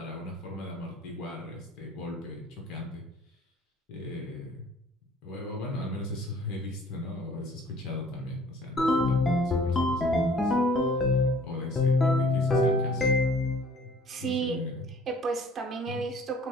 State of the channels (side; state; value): both; normal; correlation 0.53